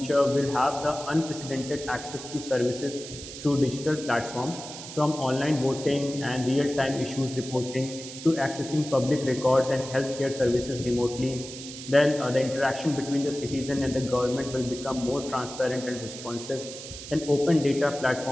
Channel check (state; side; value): noise; right; hiss, 12 dB below the sound